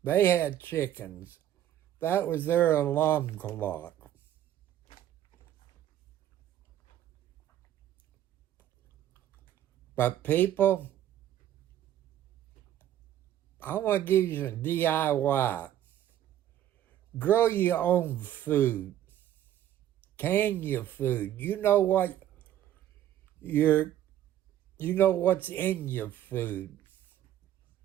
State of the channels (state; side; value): quieter; left; 11.9 dB